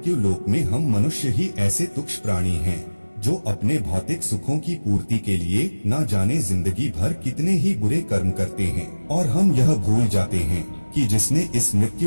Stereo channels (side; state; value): both; inverted; correlation -1.00